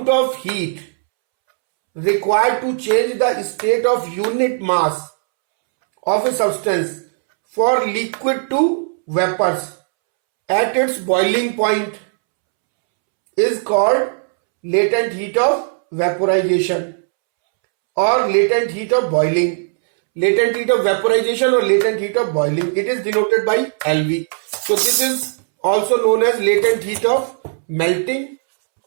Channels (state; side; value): silent; left; 68 dB below the other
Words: of heat required to change the state of unit mass of a substance for liquid to vapors at its boiling point is called latent heat of vaporization or latent heat of boiling. Latent heat of vaporization or latent heat of boiling, it is denoted by LV. So this is also known as latent heat of melting,